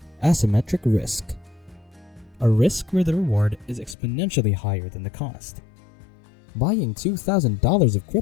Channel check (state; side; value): drops out; right; at 4.0 s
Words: Asymmetric risk. A risk where the reward is exponentially higher than the cost. Buying $2,000 of